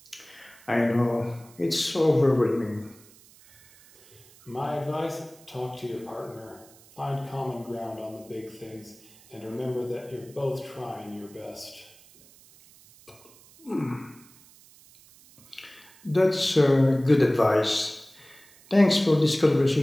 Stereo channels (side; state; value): right; noise; hiss, 25 dB below the sound